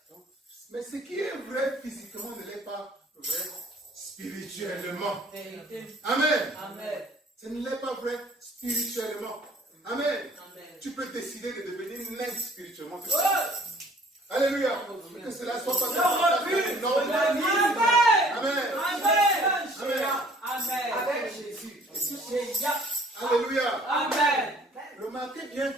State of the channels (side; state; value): both; normal; correlation 0.55